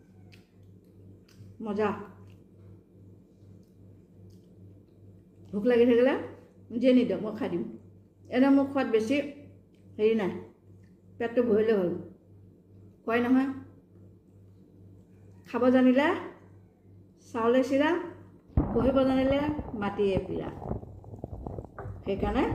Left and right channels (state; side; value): identical; both; correlation 1.00